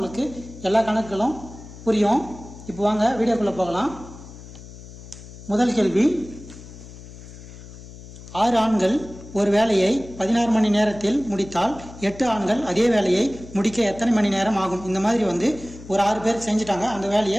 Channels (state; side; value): noise; left; hum, 16 dB below the sound